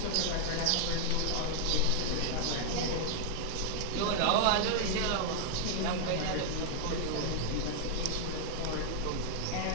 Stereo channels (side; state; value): both; different; correlation 0.00